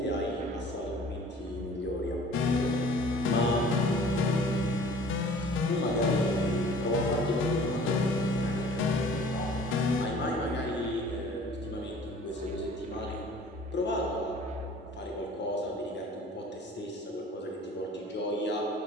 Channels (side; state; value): both; normal; correlation 0.49